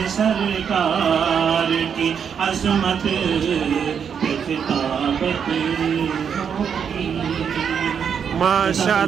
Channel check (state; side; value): quieter; left; 7.3 dB